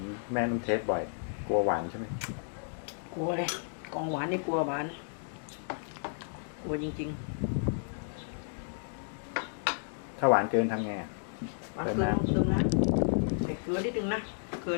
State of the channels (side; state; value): right; silent; digital silence